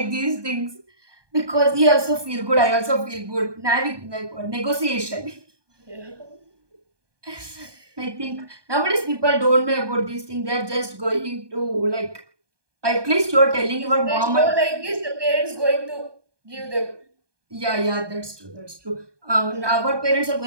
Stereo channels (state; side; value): late; left; 1.2 ms